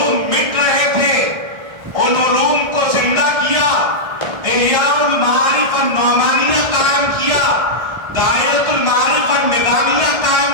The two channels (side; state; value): left; late; 1.5 ms